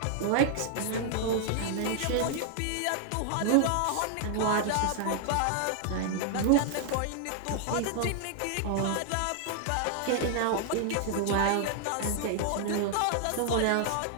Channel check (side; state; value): both; different; correlation 0.00